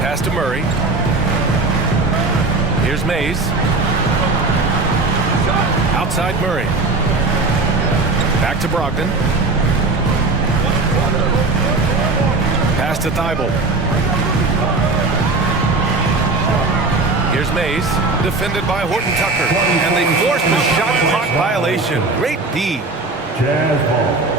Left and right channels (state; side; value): quieter; left; 3.5 dB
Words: to Murray. Here's Mays. Outside Murray. Back to Brogdon. Pass to Thibault. Here's Mays, defended by Horton-Tucker. And they forced a shot clock violation. Great D. Jazz ball.